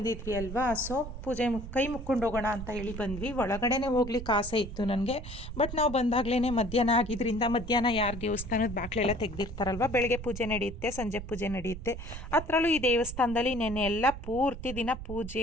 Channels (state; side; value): noise; right; rumble, 9 dB below the sound